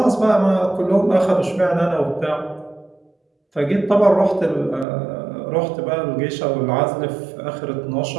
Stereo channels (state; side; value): drops out; left; at 4.9 s